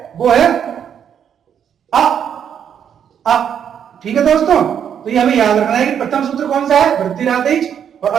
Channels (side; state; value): left; quieter; 8.5 dB